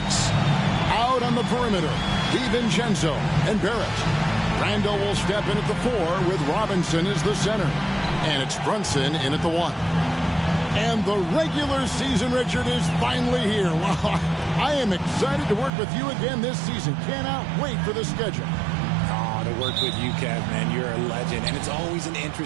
out on the perimeter, DiVincenzo and Barrett. Randall will step in at the 4 with Robinson as the center. And it's Brunson in at the 1. And the regular season, Richard, is finally here. Wow, I am excited to work with you again this season. Cannot wait for the schedule. Oh, to work with you, Kev, man. You're a legend, and it's always an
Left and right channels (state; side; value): drops out; left; at 15.7 s